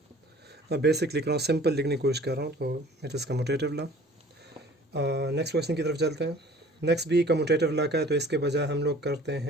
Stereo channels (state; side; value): normal; both; correlation 0.49